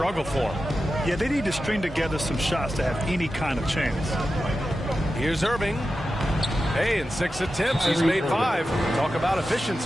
for him. Yeah, they need to string together some shots to have any kind of chance. Here's Irving. Hey, in 6 attempts, he's made 5. Talk about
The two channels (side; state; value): both; normal; correlation 0.92